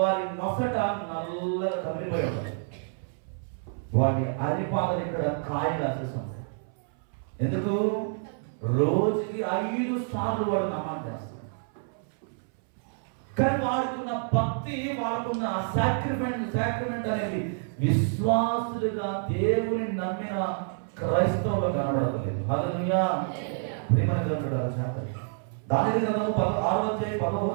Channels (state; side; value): silent; left; 59 dB below the other